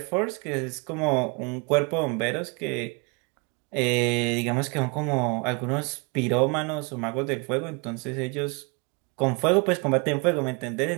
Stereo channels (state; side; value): quieter; left; 31.1 dB